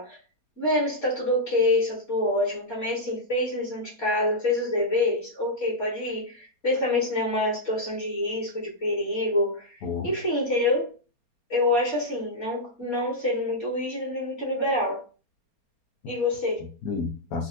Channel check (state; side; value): late; right; 4.3 ms